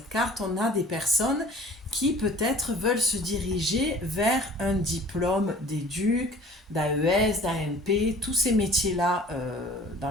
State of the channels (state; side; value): normal; both; correlation 0.47